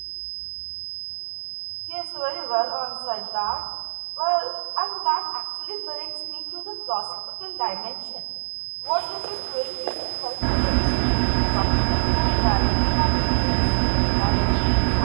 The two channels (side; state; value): left; silent; 61 dB below the other